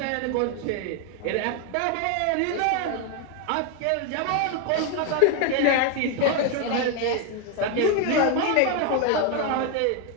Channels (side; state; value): both; different; correlation 0.01